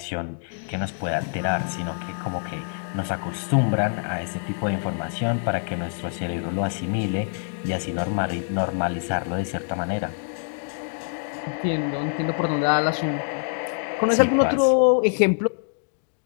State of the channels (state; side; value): silent; right; digital silence